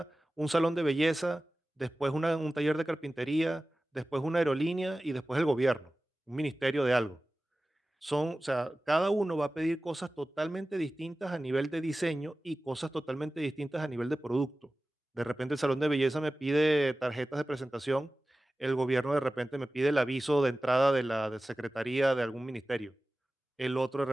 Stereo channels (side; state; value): both; normal; correlation 0.96